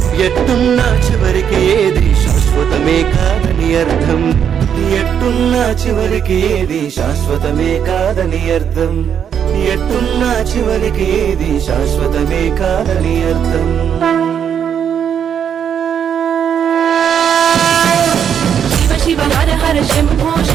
ఎట్టున్నా చివరికి ఏది శాశ్వతమే కాదని అర్థం ఎట్టున్నా చివరికి ఏది శాశ్వతమే కాదని అర్థం ఎట్టున్నా చివరికి ఏది శాశ్వతమే కాదని అర్థం శివ శివ హర హర శంభో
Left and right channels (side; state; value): left; quieter; 8.3 dB